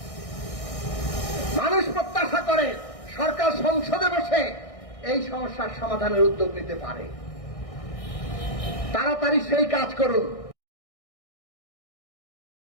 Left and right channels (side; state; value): right; late; 1.6 ms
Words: মানুষ প্রত্যাশা করে সরকার সংসদে বসে এই সমস্যার সমাধানের উদ্যোগ নিতে পারে। তাড়াতাড়ি সেই কাজ করুন।